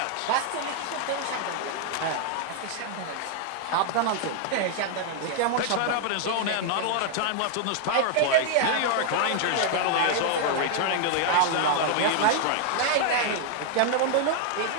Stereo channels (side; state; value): both; different; correlation 0.00